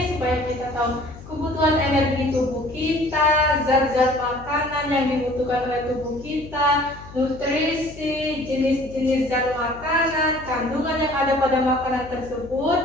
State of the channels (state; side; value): noise; left; hum, 17 dB below the sound